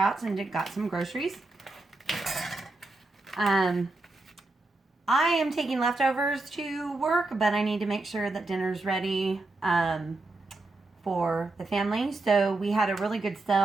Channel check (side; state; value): left; quieter; 3.1 dB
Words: and got some groceries. I am taking leftovers to work, but I need to make sure that dinner's ready for the family. So we had a really good